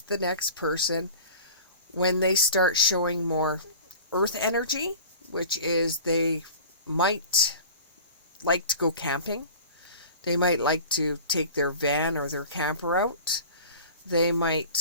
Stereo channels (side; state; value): both; inverted; correlation -0.40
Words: the next person when they start showing more earth energy, which is they might like to go camping. They might like to take their van or their camper out. They